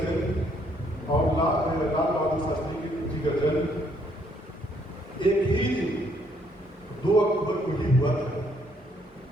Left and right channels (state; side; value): normal; both; correlation 0.69